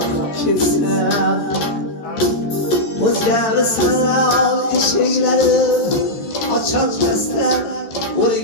kesin Özgemi sanal şeyleri açılmazlar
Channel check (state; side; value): late; right; 14 ms